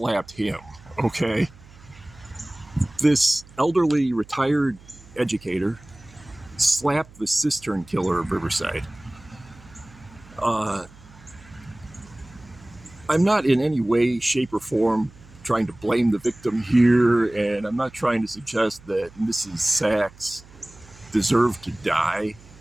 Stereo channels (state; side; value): noise; right; hum, 23 dB below the sound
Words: him, okay? This elderly retired educator slapped the Cistern killer of Riverside. I'm not in any way, shape, or form trying to blame the victim here, and I'm not trying to suggest that Mrs. Sachs deserved to die,